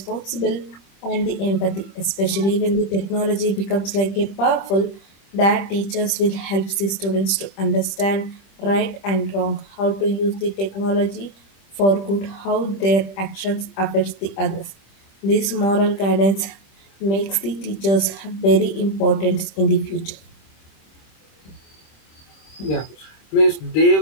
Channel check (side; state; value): right; late; 25 ms